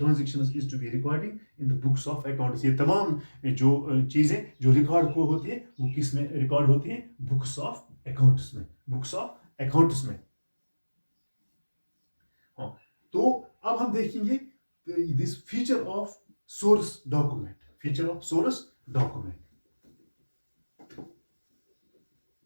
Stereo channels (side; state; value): both; inverted; correlation -1.00